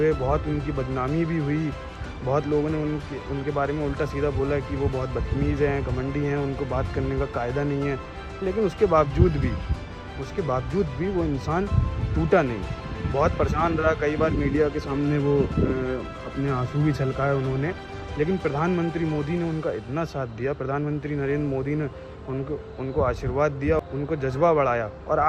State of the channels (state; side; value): identical; both; correlation 1.00